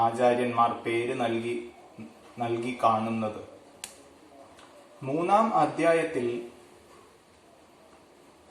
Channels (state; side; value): identical; both; correlation 1.00